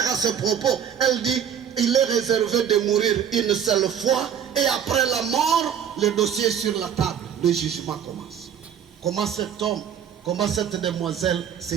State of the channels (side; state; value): left; quieter; 8.6 dB